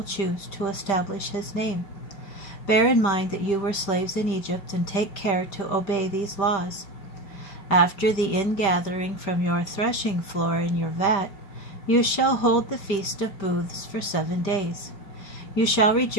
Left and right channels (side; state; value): right; late; 5.1 ms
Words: choose to establish his name. Bear in mind that you were slaves in Egypt, and take care to obey these laws. After the ingathering from your threshing floor in your vat, you shall hold the Feast of Booths for 7 days. You shall